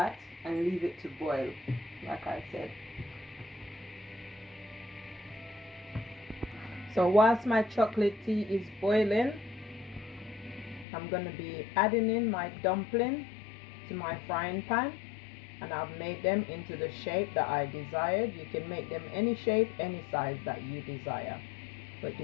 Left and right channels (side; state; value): right; drops out; at 10.9 s